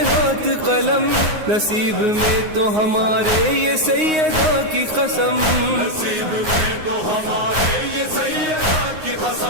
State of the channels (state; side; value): late; left; 9.6 ms